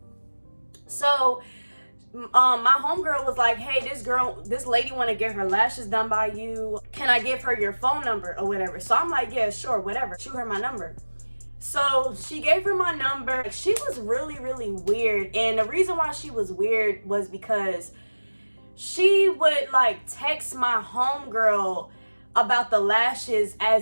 So my homegirl was like, hey, this lady want to get her lashes done by you. Can I give her your phone number or whatever? So I'm like, yeah, sure, whatever. Shoot her my number. So she gave her my number. She was really weird. And the reason why she was weird was because she would like text my homegirl about the lashes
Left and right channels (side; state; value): both; inverted; correlation -1.00